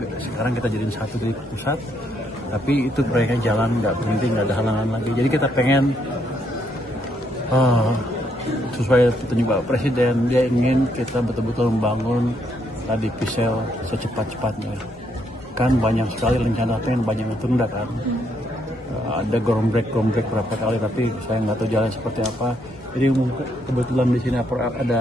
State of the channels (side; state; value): left; noise; hum, 24 dB below the sound